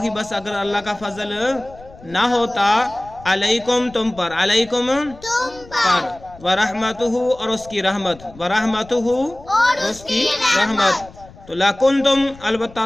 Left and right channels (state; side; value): noise; left; rumble, 21 dB below the sound